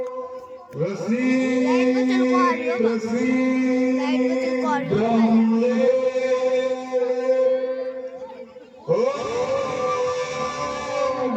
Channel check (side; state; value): both; identical; correlation 1.00